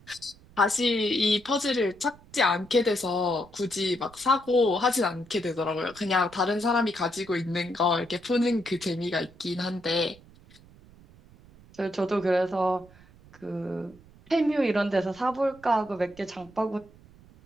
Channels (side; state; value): right; noise; rumble, 24 dB below the sound